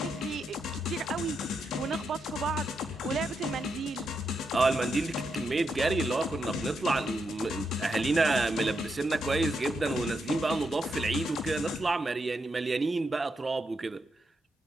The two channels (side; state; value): both; normal; correlation 0.83